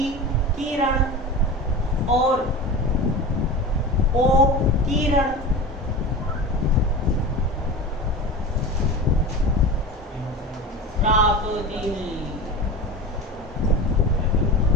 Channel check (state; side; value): normal; both; correlation 0.30